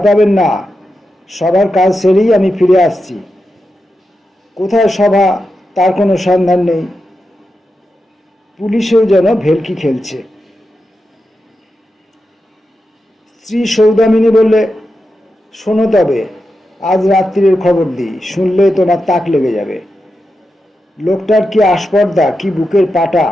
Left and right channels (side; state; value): both; normal; correlation 0.89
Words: পাবেন না, সবার কাজ সেরেই আমি ফিরে আসছি। কোথায় সভা তার কোনো সন্ধান নেই। পুলিশেও যেন ভেলকি খেলছে। স্ত্রী সৌদামিনী বললে, শোনো তবে, আজ রাত্রির খবর দিই, শুনলে তোমার তাক লেগে যাবে। লোকটার কি আস্পর্ধা, কি বুকের পাটা।